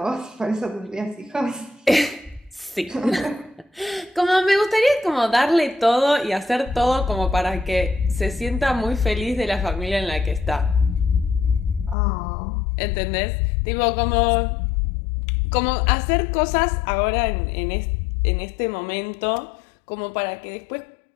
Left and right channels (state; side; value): drops out; right; at 12.0 s